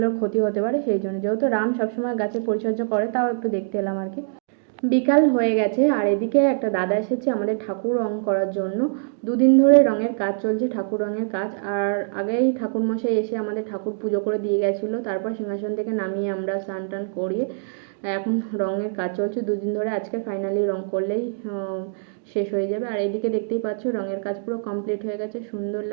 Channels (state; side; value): silent; left; digital silence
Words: ক্ষতি হতে পারে, সেই জন্য। যেহেতু রাম সবসময় গাছের পরিচর্যা করে, তাও একটু দেখতে এলাম আর কি। বিকাল হয়ে গেছে আর এদিকে একটা দাদা এসেছে আমাদের ঠাকুর রং করার জন্য। দুদিন ধরে রঙের কাজ চলছে, ঠাকুর রঙের কাজ। আর আগেই ঠাকুরমশাই এসে আমাদের ঠাকুর পুজো করে দিয়ে গেছিলো, তারপর সিংহাসন থেকে নামিয়ে আমরা স্নান টান করিয়ে এখন রঙের কাজ চলছে দুদিন ধরে। আজকে ফাইনালি রং করলেই শেষ হয়ে যাবে। আর এদিকে দেখতেই পাচ্ছ রঙের কাজ পুরো কমপ্লিট হয়ে গেছে, সুন্দর